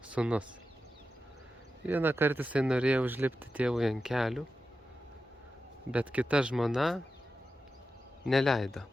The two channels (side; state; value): both; normal; correlation 0.91